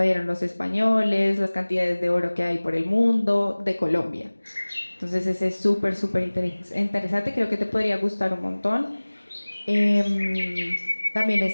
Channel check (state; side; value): inverted; both; correlation -1.00